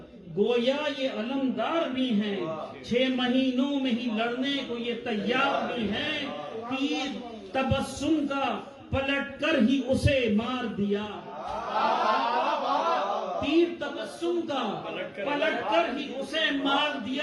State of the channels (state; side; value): identical; both; correlation 1.00